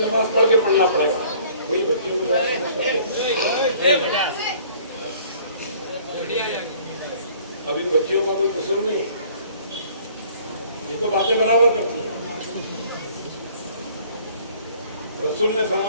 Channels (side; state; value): both; inverted; correlation -0.54